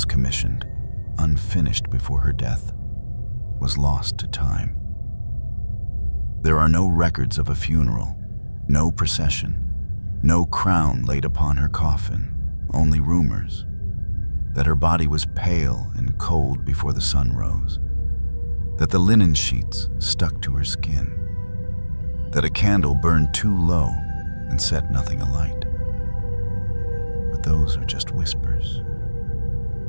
commissioned, unfinished before her death, was lost to time. There are no records of a funeral, no procession, no crown laid upon her coffin, only rumors that her body was pale and cold before the sun rose, that the linen sheets stuck to her skin, that a candle burned too low and set nothing alight. But those are just whispers.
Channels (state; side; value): inverted; both; correlation -1.00